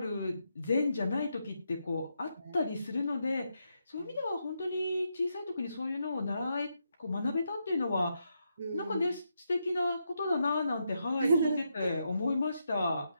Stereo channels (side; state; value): both; inverted; correlation -0.82